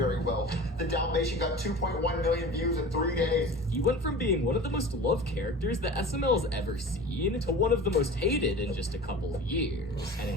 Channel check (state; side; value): normal; both; correlation 0.37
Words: well. The Dalmatian got 2.1 million views in 3 days. He went from being one of the most loved characters that SML has ever seen to one of the most hated in just a couple of years. And